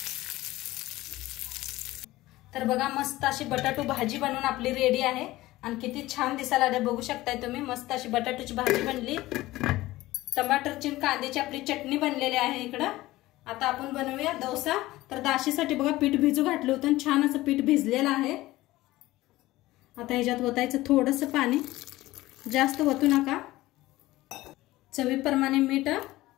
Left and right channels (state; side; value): quieter; right; 17.7 dB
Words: तर बघा मस्त अशी बटाटो भाजी बनवून आपली रेडी आहे आणि किती छान दिसायला आले बघू शकताय तुम्ही. मस्त अशी बटाटोची भाजी बनली. टमाटरची कांद्याची आपली चटणी बनलेली आहे इकडं. आता आपण बनवूया डोसा. तर दाशीसाठी बघा पीठ भिजू घातलं होतं, छान असं पीठ भिजलेलं आहे. आता ह्याच्यात ओतायचं थोडंसं पाणी, जास्त ओतू नका. चवीप्रमाणे मीठ.